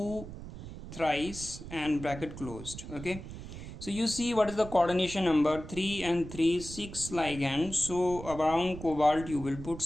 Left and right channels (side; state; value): right; noise; rumble, 11 dB below the sound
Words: thrice and bracket closed. Okay, so you see what is the coordination number? 3 and 3, 6 ligands. So around cobalt you will put